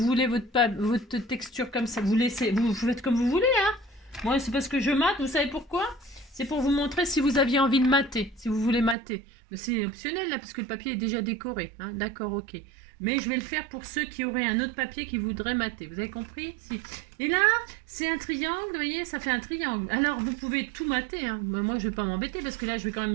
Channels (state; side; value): drops out; left; at 9.0 s